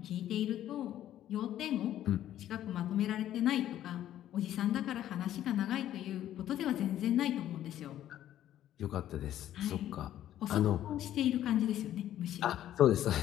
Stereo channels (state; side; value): quieter; right; 12.1 dB